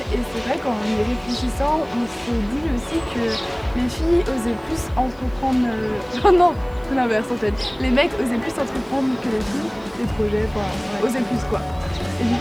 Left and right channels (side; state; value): right; noise; hiss, 30 dB below the sound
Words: Et c'est vrai qu'en y réfléchissant, on s'est dit aussi que les filles osaient plus entreprendre... Oh non, l'inverse en fait. Les mecs osaient plus entreprendre que les filles, des projets, osaient plus quoi. Et du